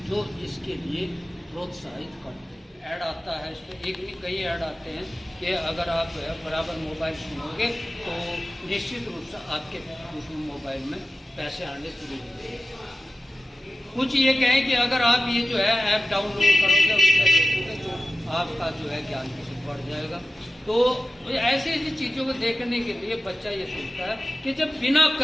जो इसके लिए प्रोत्साहित करते हैं। ऐड आता है इस पर, एक भी कई ऐड आते हैं कि अगर आप बराबर मोबाइल सुनोगे तो निश्चित रूप से आपके उस मोबाइल में पैसे आने शुरू हो जाएंगे। कुछ ये कहें कि अगर आप ये जो है ऐप डाउनलोड करोगे उसमें देखोगे तो आपका जो है ज्ञान किसी बढ़ जाएगा। तो ऐसी ऐसी चीज़ों को देखने के लिए बच्चा ये सोचता है कि जब बिना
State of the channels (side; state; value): both; normal; correlation 0.95